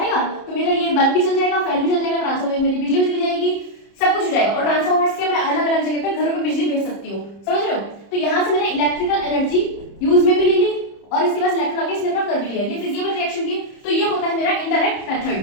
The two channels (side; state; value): right; late; 30 ms